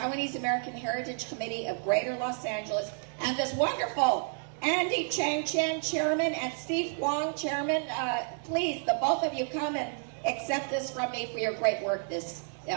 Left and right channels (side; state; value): left; silent; 57 dB below the other